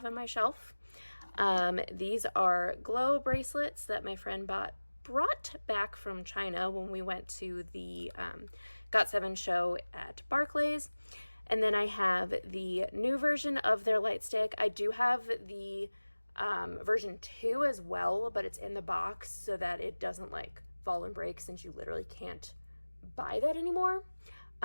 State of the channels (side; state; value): both; inverted; correlation -1.00